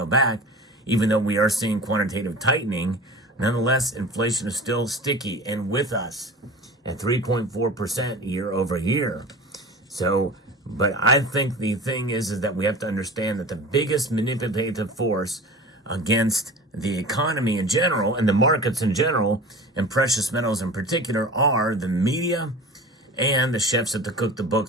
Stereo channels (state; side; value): normal; both; correlation 0.36